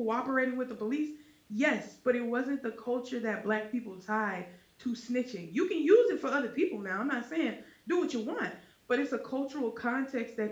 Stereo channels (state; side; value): identical; both; correlation 1.00